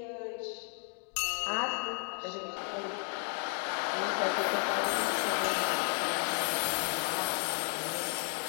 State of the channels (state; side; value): quieter; right; 39.6 dB